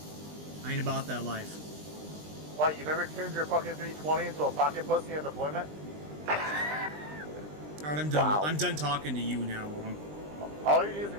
I ain't about that life. What, you never turned your fucking 320 into a pocket pussy in deployment? Alright, I'm done. Wow. I'm done talking to you now. All you need is a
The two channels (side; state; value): left; late; 20 ms